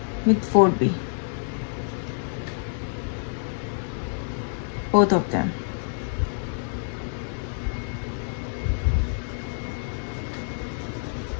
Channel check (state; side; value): silent; right; digital silence